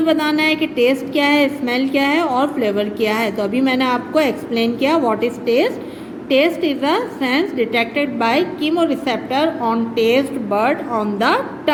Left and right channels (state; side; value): identical; both; correlation 1.00